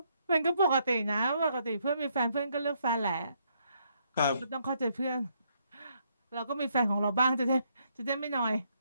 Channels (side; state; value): both; inverted; correlation -0.73